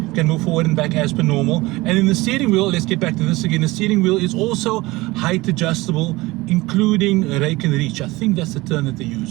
Can move forward and back as per normal. And in the steering wheel, let's get back to this again. The steering wheel is also height adjustable, including rake and reach. I think that's the term that they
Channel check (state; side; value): quieter; left; 20.9 dB